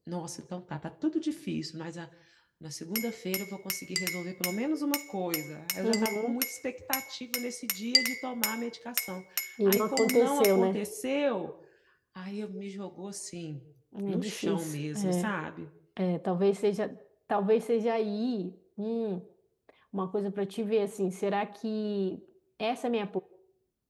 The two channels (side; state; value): both; identical; correlation 1.00